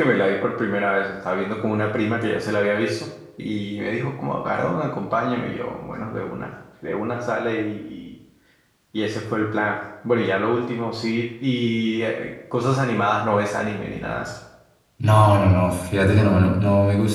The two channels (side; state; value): both; identical; correlation 1.00